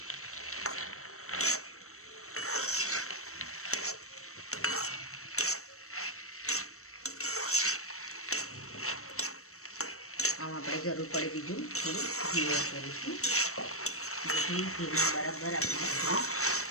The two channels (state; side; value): late; right; 0.63 ms